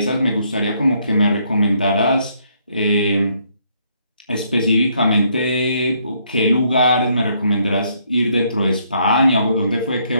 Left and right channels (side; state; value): both; inverted; correlation -0.71